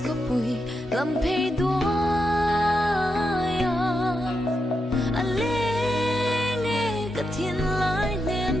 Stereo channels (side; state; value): both; normal; correlation 0.85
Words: có bụi làm phê đóa anh lên nghe cả thiên lái